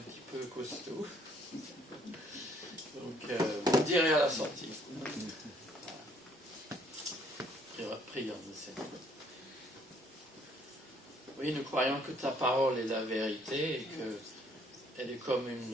peu costaud. Donc, vous me direz à la sortie. Prions le Seigneur. Oui, nous croyons que ta parole est la vérité et qu'elle est comme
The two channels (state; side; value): normal; both; correlation 0.64